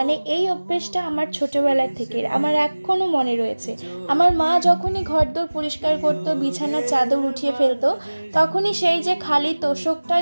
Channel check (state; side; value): inverted; both; correlation -1.00